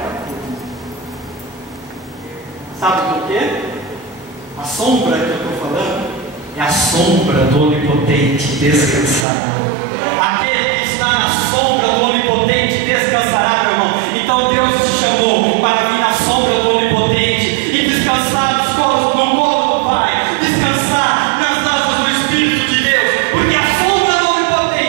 todos. Sabe por quê? A sombra que eu estou falando é a sombra do Onipotente descansará. Aquele que está na sombra do Onipotente descansará, meu irmão. Então Deus te chamou para vir na sombra do Onipotente e descansar no colo do Pai, descansar nas asas do Espírito de Deus, porque a sombra do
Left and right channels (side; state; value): left; drops out; at 9.2 s